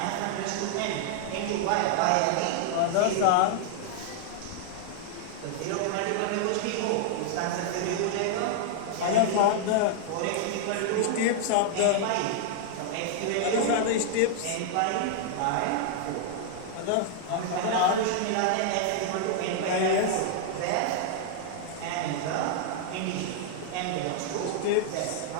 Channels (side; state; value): both; different; correlation -0.01